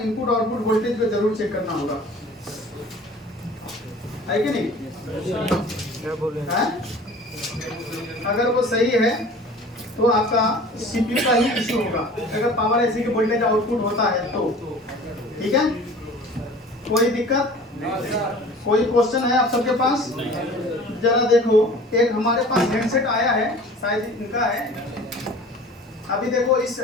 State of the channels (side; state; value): both; normal; correlation 0.44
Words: output voltage को जरूर चेक करना होगा, है कि नहीं? क्या बोले है? अगर वो सही है तो आपका सीपीयू का ही इशू होगा, अगर पावर आईसी के वोल्टेज आउटपुट होता है तो। ठीक है, कोई दिक्कत? कोई क्वेश्चन है आप सबके पास? जरा देखो, एक हमारे पास हैंडसेट आया है, शायद इनका है। अभी देखो इस